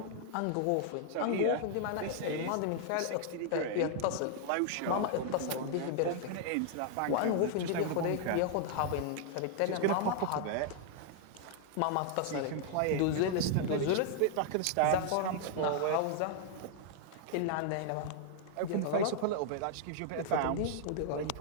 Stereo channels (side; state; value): both; different; correlation 0.00